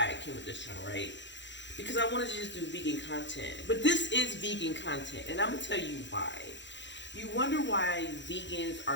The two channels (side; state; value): right; late; 0.53 ms